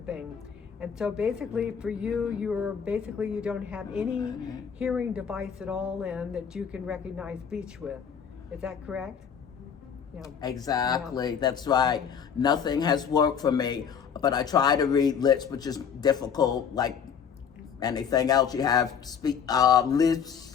thing. And so basically for you, you don't have any hearing device at all in that you can recognize speech with. Is that correct? Yeah. Exactly, Yeah. that's right. Nothing has worked for me, but I try to read lips, which is difficult, like anything else. You have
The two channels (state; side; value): quieter; right; 7.3 dB